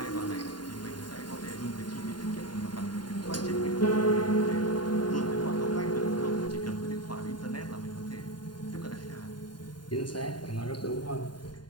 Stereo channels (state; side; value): late; right; 0.71 ms